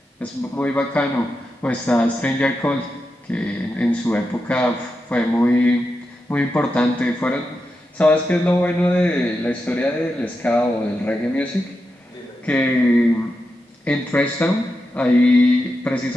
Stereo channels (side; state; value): both; normal; correlation 0.88